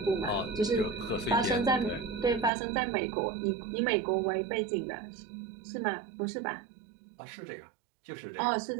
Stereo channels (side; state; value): left; drops out; at 2.5 s